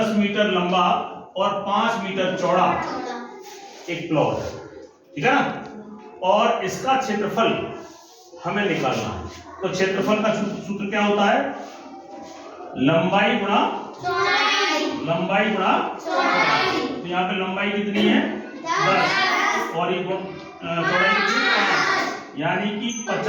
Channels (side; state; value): both; identical; correlation 1.00